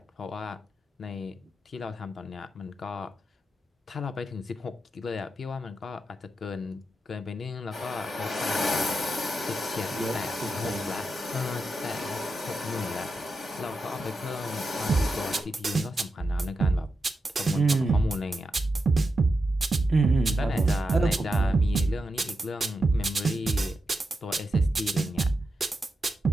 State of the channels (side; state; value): both; normal; correlation 0.88